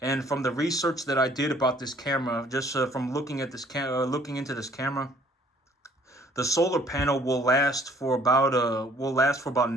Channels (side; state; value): both; normal; correlation 0.59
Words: from the research that I did about this camera, just from looking at looking into this camera, the solar panel will last for about